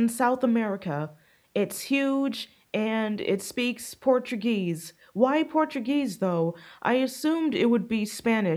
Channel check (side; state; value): both; identical; correlation 1.00